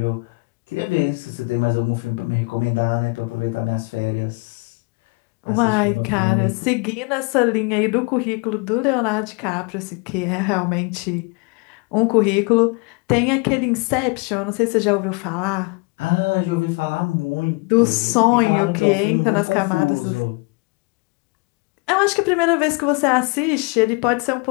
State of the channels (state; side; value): quieter; right; 29.5 dB